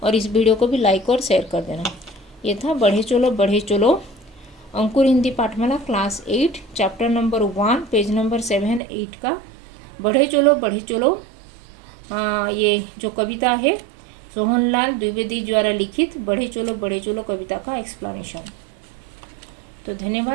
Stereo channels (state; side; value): drops out; left; at 8.8 s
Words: और इस वीडियो को भी लाइक और शेयर कर देना। ये था बढ़े चलो Ankur Hindi Pathmala class 8 chapter number 1 page number 7, 8 का बढ़े चलो ये जो कविता है सोहनलाल द्विवेदी द्वारा लिखित बढ़े चलो कविता का एक्सप्लेनेशन। तो